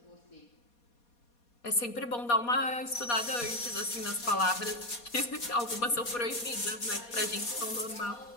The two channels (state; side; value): late; right; 4.2 ms